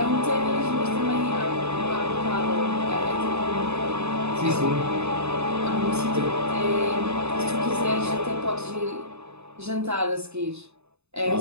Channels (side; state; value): left; late; 0.81 ms